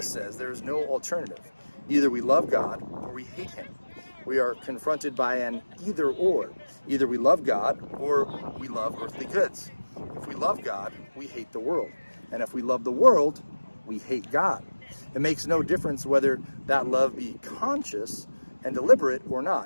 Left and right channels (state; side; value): inverted; both; correlation -1.00